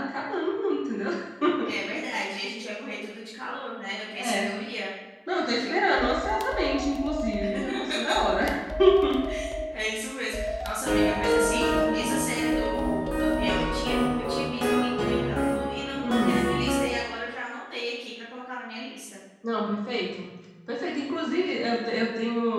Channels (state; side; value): identical; both; correlation 1.00